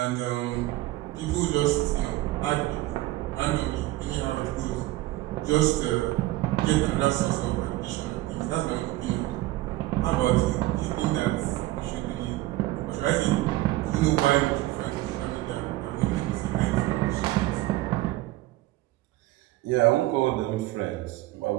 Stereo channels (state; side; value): quieter; left; 17.4 dB